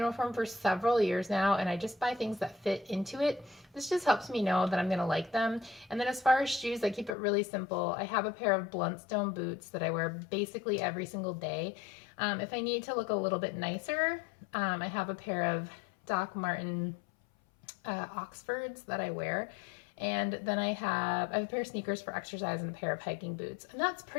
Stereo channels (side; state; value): right; drops out; at 7.2 s